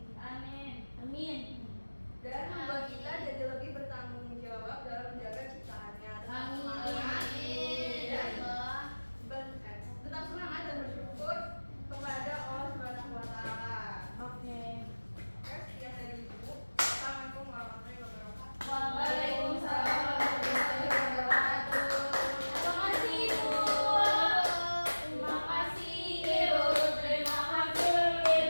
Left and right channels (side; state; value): both; inverted; correlation -1.00